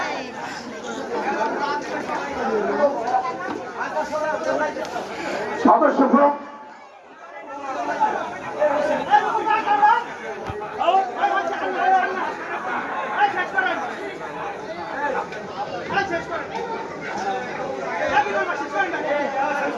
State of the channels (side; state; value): both; identical; correlation 1.00